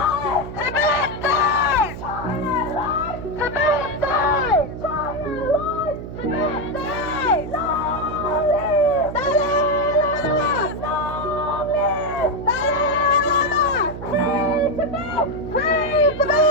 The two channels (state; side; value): noise; right; hum, 10 dB below the sound